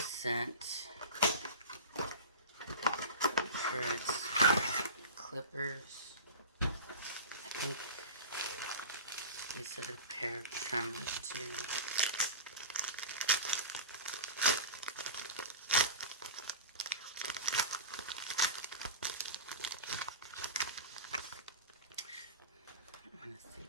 sent for its clippers. I think they said a pair of trimmers too. I'm gonna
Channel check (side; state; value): both; inverted; correlation -0.31